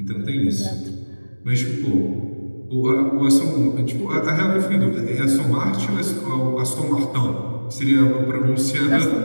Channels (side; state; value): both; inverted; correlation -1.00